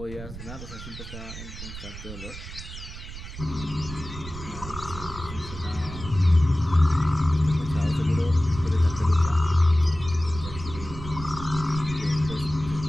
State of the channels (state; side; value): noise; right; rumble, 11 dB below the sound